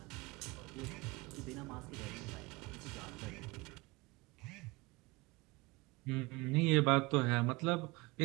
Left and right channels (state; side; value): quieter; left; 23.9 dB